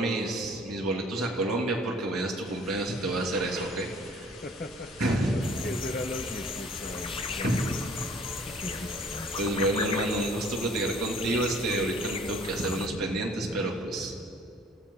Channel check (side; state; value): both; normal; correlation 0.54